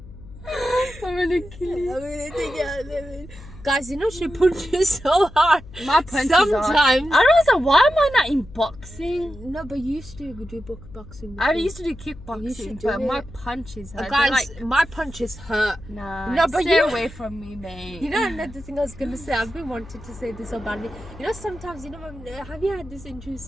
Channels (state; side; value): noise; left; hum, 17 dB below the sound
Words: I'm gonna kill you. I'm gonna take it out. Guys, you know she punches so hard. My punches sometimes. I don't know why am I not in boxing? No, but you used to do boxing. I used to do kickboxing, but my punches hurt. Guys, my punches hurt. Nah, no, but stay away from me, mate. You know another thing I was gonna say. I've been wanting to say this so badly. You know, sometimes, you know, have you had this